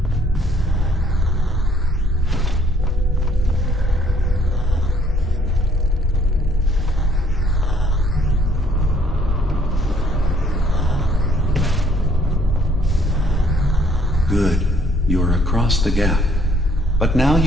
Good. You're across the gap. But now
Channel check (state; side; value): normal; both; correlation 0.64